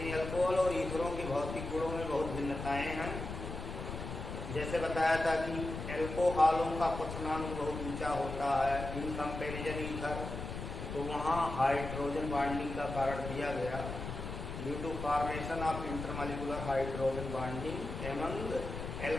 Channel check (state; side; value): noise; left; rumble, 7 dB below the sound